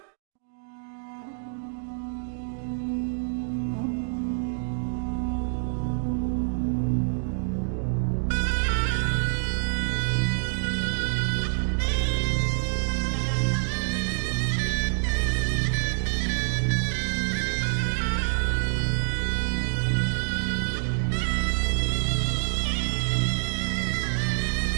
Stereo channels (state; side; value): silent; left; digital silence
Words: يمهله ليضع تحت أيدي المسلمين رجال ونساء وأموال أوروبا، سلاحها وعتادها وأقواتها. بدأ التجهيز للحملة بعد شفائه مباشرة في نهاية عام 1244 واستمر لسنوات، لم يترك شيء للصدفة أو سوء التجهيز. بدأ التجهيز للحملة بأخذ لويس للرموز المسيحية التي يعتقد